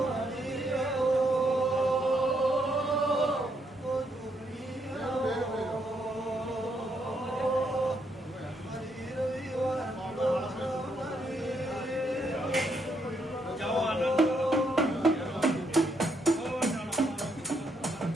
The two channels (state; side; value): normal; both; correlation 0.76